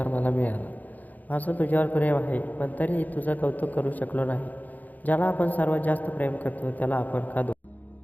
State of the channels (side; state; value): right; late; 0.081 ms